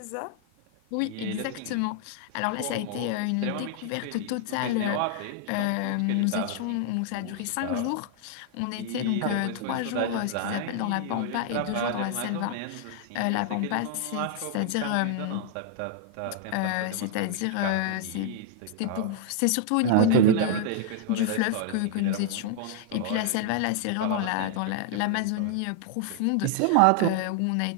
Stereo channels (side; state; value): both; different; correlation 0.00